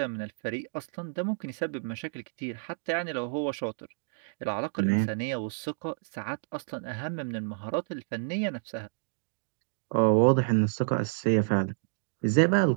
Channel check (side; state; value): left; silent; digital silence